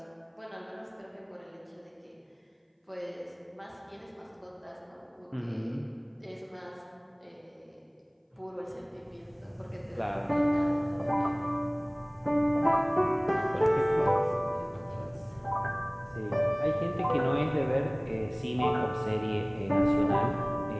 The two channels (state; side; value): identical; both; correlation 1.00